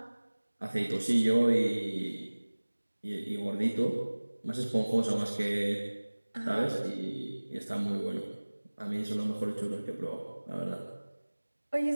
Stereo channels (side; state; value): both; inverted; correlation -1.00